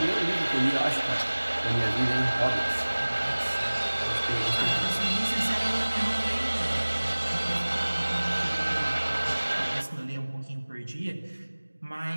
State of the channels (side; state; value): both; inverted; correlation -1.00